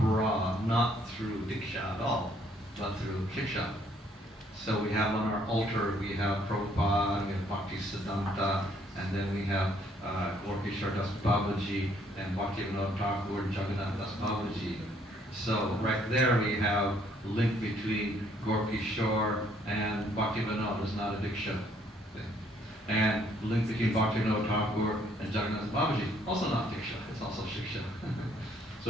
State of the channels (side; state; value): both; normal; correlation 0.65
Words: not through Diksha at all, but through Shiksha. So we have on our altar, we have Prabhupada, we have Bhaktisiddhanta, and then we have Gorkishore Das Babaji and Bhaktivinoda Thakur and Jagannath Das Babaji. So right there we have a link between Gorkishore and Bhaktivinoda. It's not a Diksha thing. And the link between Bhaktivinoda Thakur and Jagannath Babaji, also not Diksha, it's also Shiksha.